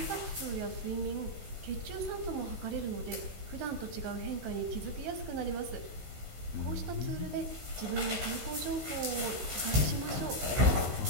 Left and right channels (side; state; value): left; late; 16 ms